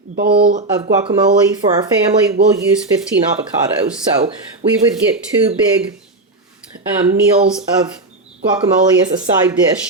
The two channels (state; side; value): quieter; left; 3.0 dB